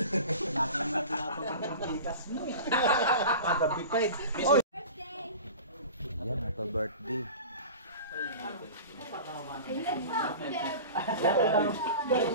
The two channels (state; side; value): inverted; both; correlation -0.35